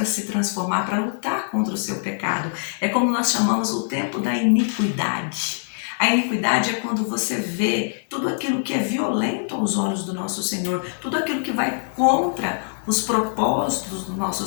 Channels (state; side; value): silent; right; digital silence